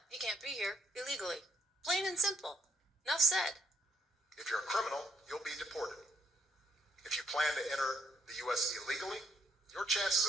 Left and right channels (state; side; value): normal; both; correlation 0.70